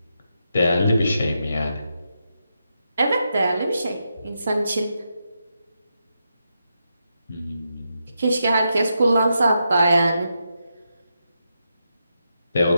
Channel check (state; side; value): inverted; both; correlation -0.84